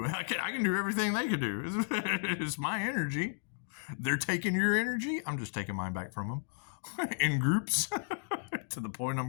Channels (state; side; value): silent; right; digital silence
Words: I can do everything they can do. It's my energy. They're taking your energy. I'm just taking mine back from them in groups to the point